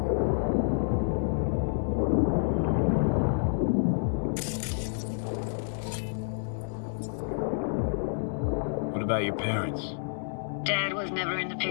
What about your parents? Dad was never in the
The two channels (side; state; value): right; silent; 59 dB below the other